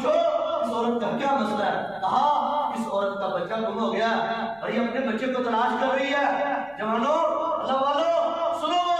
इस औरत का क्या मसला है? कहा इस औरत का बच्चा गुम हो गया और ये अपने बच्चे को तलाश कर रही है। जवानों, अल्लाह वालों, सुनो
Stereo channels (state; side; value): noise; right; rumble, 29 dB below the sound